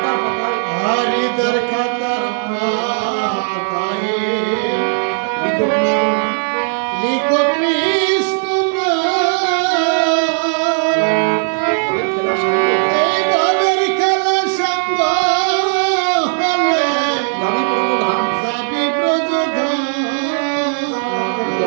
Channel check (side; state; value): left; silent; digital silence